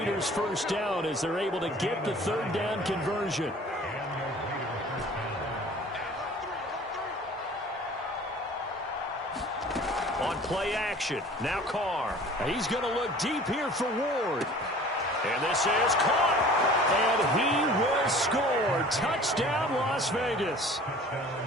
first down as they're able to get the third down conversion. On play action, now Carr. He's going to look deep here for Ward. And this is caught. And he will score. Touchdown, Las Vegas.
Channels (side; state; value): both; normal; correlation 0.46